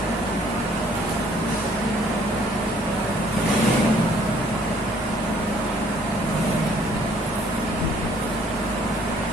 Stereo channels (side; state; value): both; normal; correlation 0.60